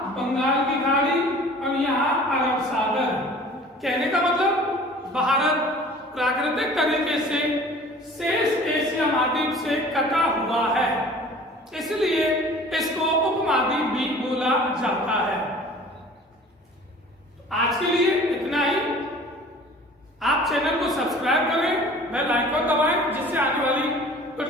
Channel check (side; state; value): both; normal; correlation 0.46